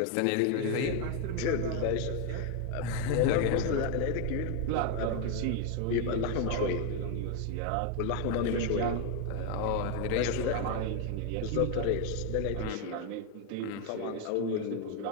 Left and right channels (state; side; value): different; both; correlation 0.01